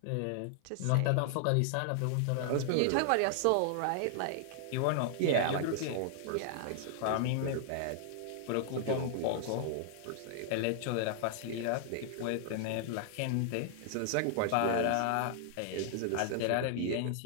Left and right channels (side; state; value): both; different; correlation -0.01